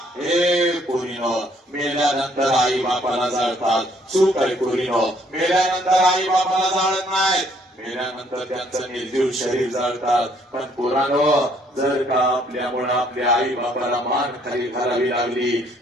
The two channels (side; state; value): both; normal; correlation 0.65